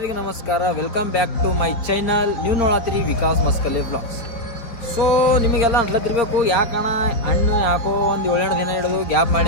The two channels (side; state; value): right; late; 4.3 ms